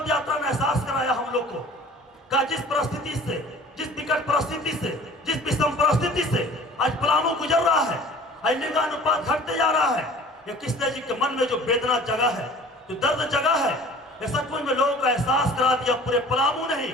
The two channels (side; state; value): both; normal; correlation 0.46